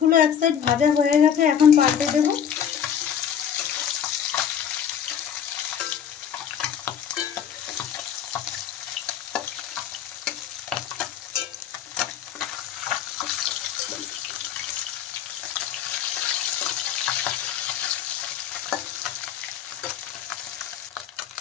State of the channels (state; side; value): quieter; right; 8.7 dB